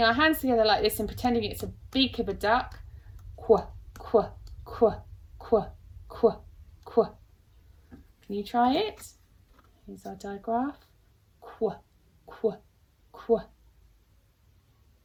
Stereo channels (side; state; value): both; identical; correlation 1.00